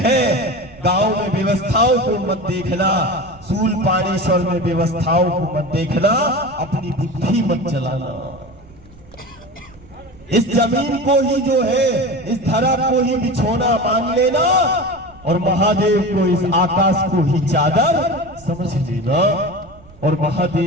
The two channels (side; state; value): right; noise; rumble, 24 dB below the sound